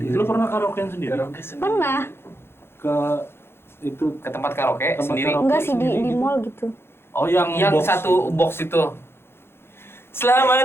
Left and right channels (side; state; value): right; late; 0.11 ms